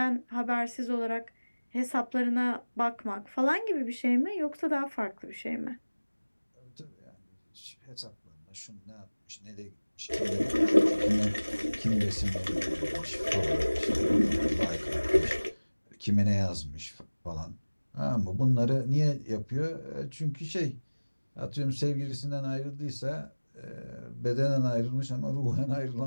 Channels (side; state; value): both; inverted; correlation -1.00